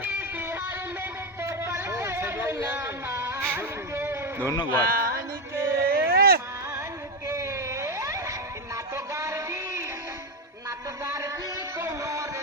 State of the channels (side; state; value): both; normal; correlation 0.09